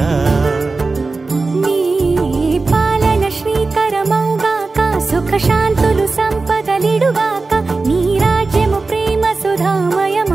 నీ పాలన శ్రీకరమౌగాక సుఖ శాంతులు సంపదలిడుగాక నీ రాజ్యము ప్రేమ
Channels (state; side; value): quieter; left; 3.8 dB